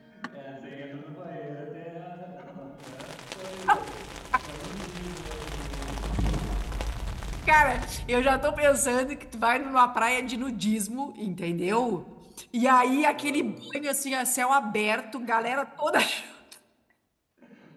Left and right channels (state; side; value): identical; both; correlation 1.00